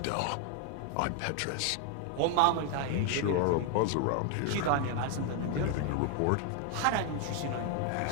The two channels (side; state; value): both; different; correlation 0.00